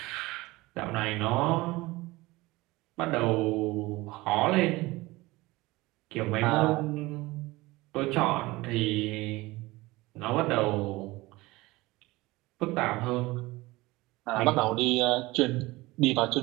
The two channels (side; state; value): left; quieter; 20.6 dB